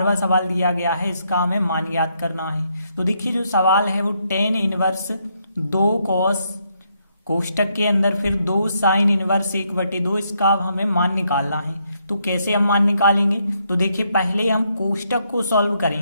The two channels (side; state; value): both; inverted; correlation -0.76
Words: सवाल दिया गया है, इसका हमें मान ज्ञात करना है। तो देखिए जो सवाल है वो tan इनवर्स 2 cos कोष्टक के अंदर फिर 2 साइन इनवर्स 1/2, इसका अब हमें मान निकालना है। तो कैसे हम मान निकालेंगे? तो देखिए पहले हम कोष्टक को सॉल्व